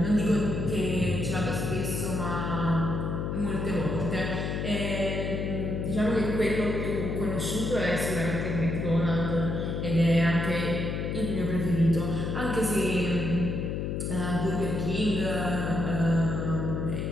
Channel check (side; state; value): left; noise; hum, 2 dB below the sound